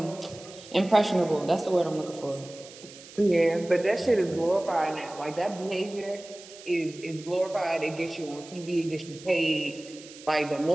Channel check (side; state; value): right; noise; hiss, 18 dB below the sound